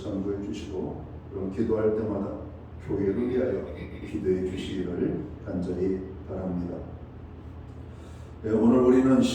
주시고 그럼 기도할 때마다 교회를 위하여 기도해 주시기를 간절히 바랍니다. 오늘 우리는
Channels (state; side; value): identical; both; correlation 1.00